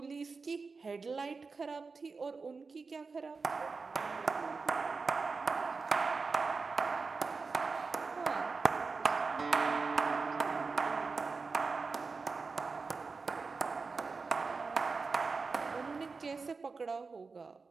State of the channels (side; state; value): left; quieter; 4.5 dB